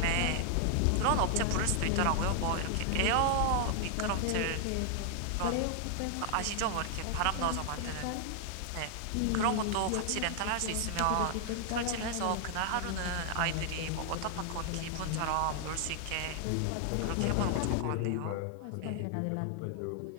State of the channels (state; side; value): different; both; correlation 0.00